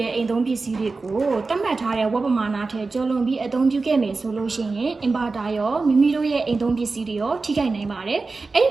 ဲ့အိမ်သုံးပစ္စည်းတွေကိုတတ်မှတ်ထားတဲ့ဝက်ပမာဏထက်ကျော်လွန်ပြီးအသုံးပြုခဲ့မယ်ဆိုလို့ရှိရင် inverter ရောမိမိတို့ရဲ့အိမ်သုံးပစ္စည်းတွေရောထိခိုက်နိုင်ပါတယ်အဲ့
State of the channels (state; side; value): quieter; left; 3.9 dB